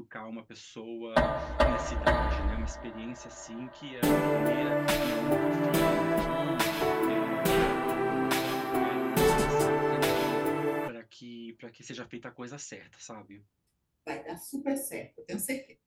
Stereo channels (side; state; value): both; identical; correlation 1.00